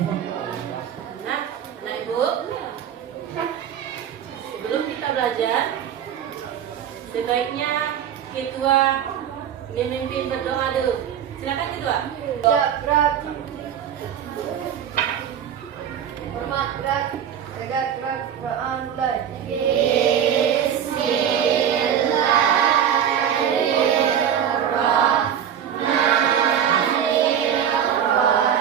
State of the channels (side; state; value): left; quieter; 9.1 dB